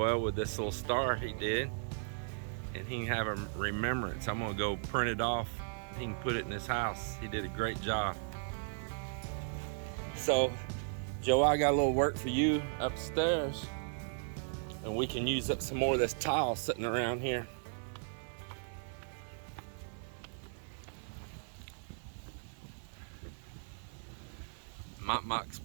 with this little star he did, and he can have a remembrance. I'm gonna go print it off. He can put it in his house. He did a great job. So Joe, I got a little work for you upstairs, and we can use up some more of this tile sitting around here. Mock's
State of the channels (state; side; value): silent; left; digital silence